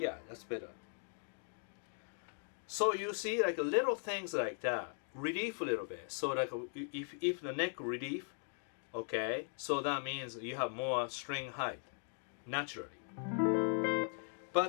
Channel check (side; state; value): right; silent; 52 dB below the other